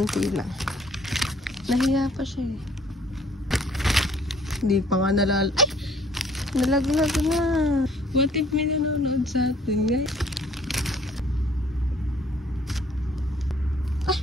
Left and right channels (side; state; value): both; normal; correlation 0.60